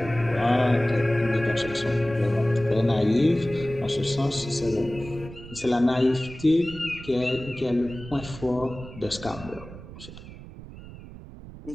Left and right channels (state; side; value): noise; right; rumble, 15 dB below the sound